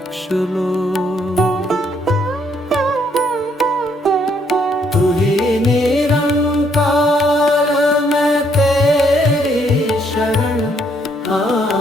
लो। तू ही निरंकार मैं तेरी शरण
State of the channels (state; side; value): normal; both; correlation 0.70